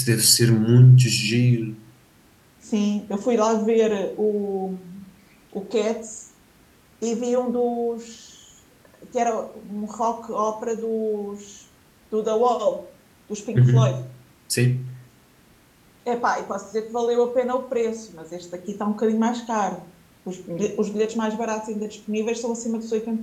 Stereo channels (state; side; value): identical; both; correlation 1.00